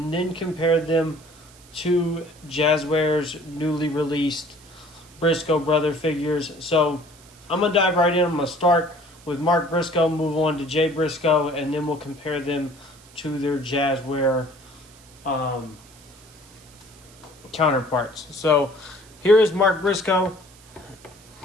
then compare them to Jazzwares' newly released Briscoe brother figures. So I'm going to dive right in. I'm going to start with Mark Briscoe, move on to Jay Briscoe, and then we'll compare them to their Jazzware counterparts. So here is Mark Briscoe.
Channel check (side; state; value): right; noise; hiss, 24 dB below the sound